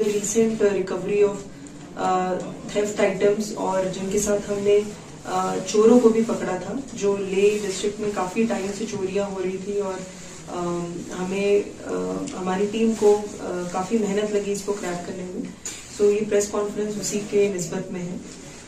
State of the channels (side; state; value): both; identical; correlation 1.00